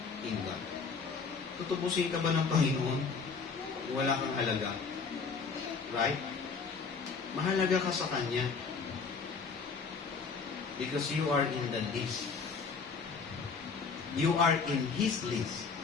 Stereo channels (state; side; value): quieter; right; 5.1 dB